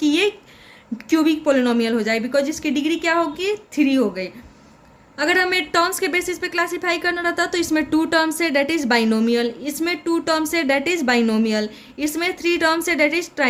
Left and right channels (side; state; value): both; identical; correlation 1.00